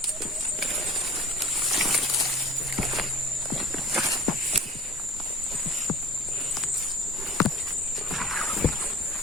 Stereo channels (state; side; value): normal; both; correlation 0.44